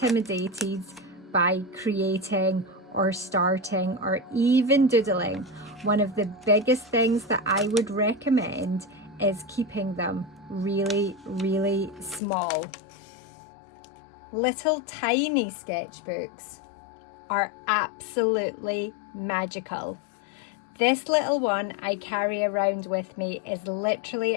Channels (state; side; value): drops out; right; at 12.2 s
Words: by creating or starting or even doodling, one of the biggest things that I would recommend is keeping them really, really small. Little tiny sketchbooks are absolutely magical. This little one I carry around with me is